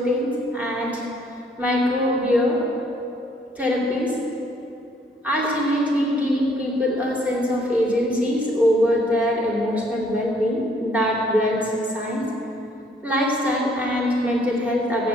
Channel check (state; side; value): normal; both; correlation 0.64